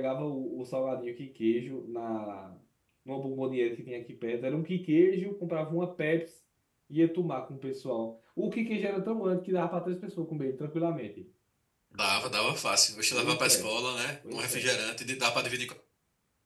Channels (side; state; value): both; identical; correlation 1.00